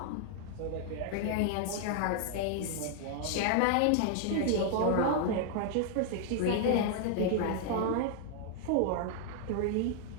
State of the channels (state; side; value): different; both; correlation 0.00